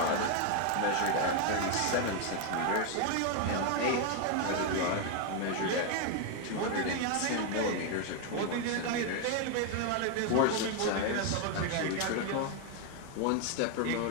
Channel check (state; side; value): different; both; correlation 0.01